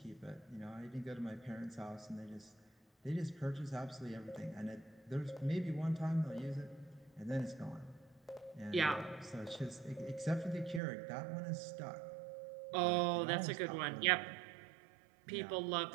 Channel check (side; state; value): left; drops out; at 10.8 s